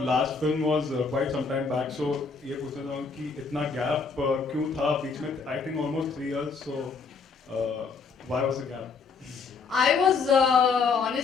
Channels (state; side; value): quieter; right; 5.0 dB